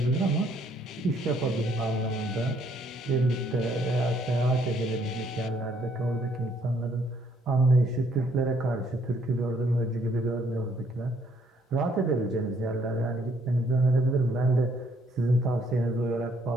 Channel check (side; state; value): both; normal; correlation 0.67